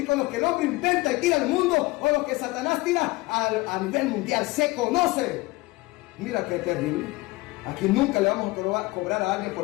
con los que el hombre inventa y tira al mundo, o los que Satanás tira a nivel mundial. Se conoce. Mira qué terrible. Aquí nunca le vamos a cobrar a alguien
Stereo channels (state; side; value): quieter; right; 21.6 dB